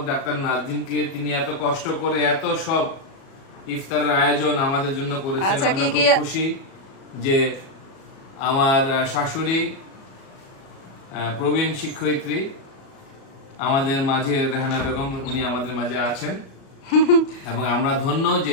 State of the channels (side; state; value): right; late; 36 ms